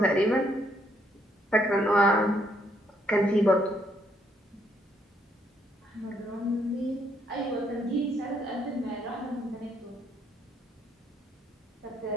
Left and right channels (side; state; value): both; normal; correlation 0.71